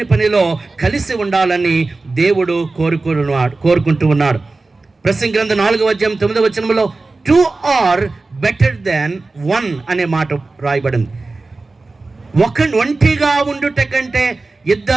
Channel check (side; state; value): left; quieter; 3.5 dB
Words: పనిలో కలిసి ఉండాలని దేవుడు కోరుకుంటూ ఉన్నాడు. ప్రసంగి గ్రంథం 4వ అధ్యాయం 9వ వచనంలో 2 are better than 1 అనే మాట రాయబడింది. ఒంటిగా ఉండుట కంటే